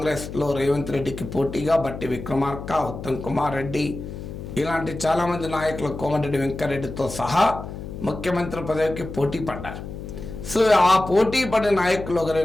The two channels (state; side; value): noise; left; hum, 10 dB below the sound